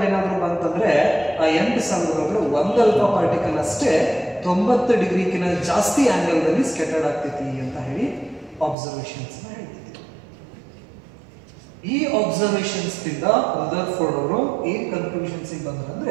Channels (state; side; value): drops out; left; at 8.8 s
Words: ಏನಾದರೂ ಬಂತಂದ್ರೆ ಆ 8000 ಒಳಗಡೆ ಒಂದು ಅಲ್ಫಾ ಪಾರ್ಟಿಕಲ್ ಅಷ್ಟೇ 90 ಡಿಗ್ರಿಗಿಂತ ಜಾಸ್ತಿ ಆಂಗಲ್ ದಲ್ಲಿ ಸ್ಕ್ಯಾಟರ್ಡ್ ಆಗ್ತೈತಿ ಅಂತ ಹೇಳಿ ಅಬ್ಸರ್ವೇಷನ್ಸ್ ಹೇಳ್ತಿದ್ರು. ಈ ಅಬ್ಸರ್ವೇಷನ್ಸ್ ದಿಂದ ರದರ್ಫೋರ್ಡ್ ಅವರು ಏನ್ ಕನ್ಕ್ಲೂಷನ್ಸ್